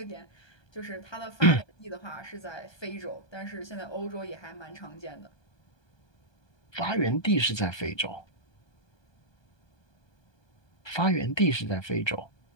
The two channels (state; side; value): late; right; 1.2 ms